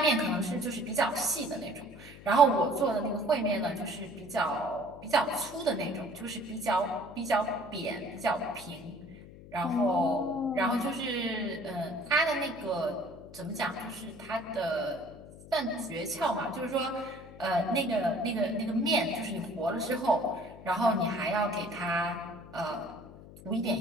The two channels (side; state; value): left; noise; hum, 17 dB below the sound